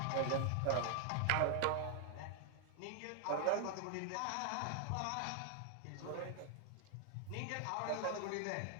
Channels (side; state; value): both; different; correlation 0.00